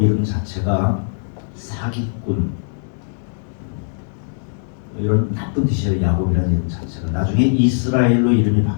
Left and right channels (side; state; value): right; silent; digital silence